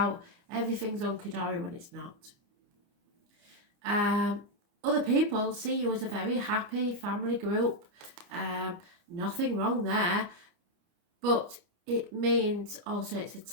everything's hunky-dory when it's not. Other people see you as a very happy family group. Nothing wrong there, but it means also it's a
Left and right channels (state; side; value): late; left; 29 ms